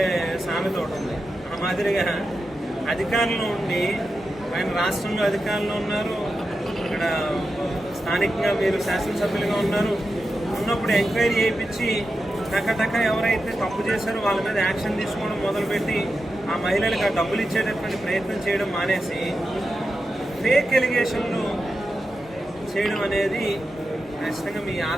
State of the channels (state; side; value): normal; both; correlation 0.90